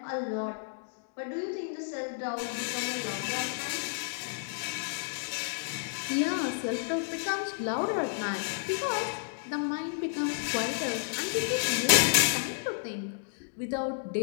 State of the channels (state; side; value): silent; right; digital silence